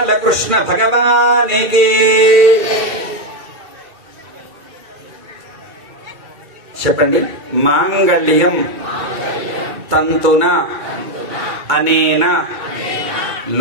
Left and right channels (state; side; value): late; left; 2.3 ms